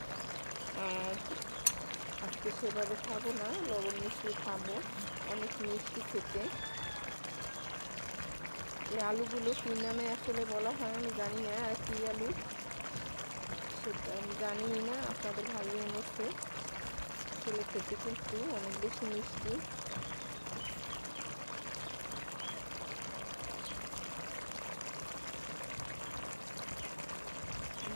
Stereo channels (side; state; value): both; inverted; correlation -1.00